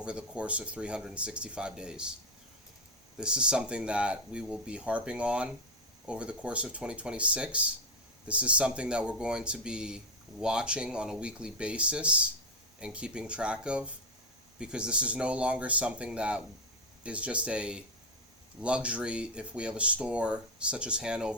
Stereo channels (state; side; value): normal; both; correlation 0.09